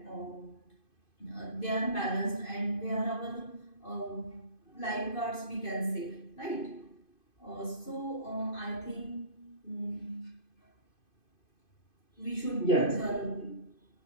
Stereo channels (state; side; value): late; right; 2.5 ms